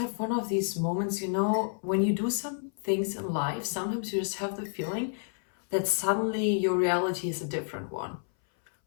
one of these moments, when you do some things in life, sometimes you just have the feeling that suddenly your reality is a different one.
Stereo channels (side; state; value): right; silent; 58 dB below the other